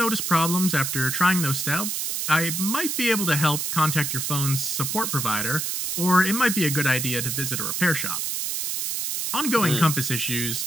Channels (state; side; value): noise; right; hiss, 2 dB below the sound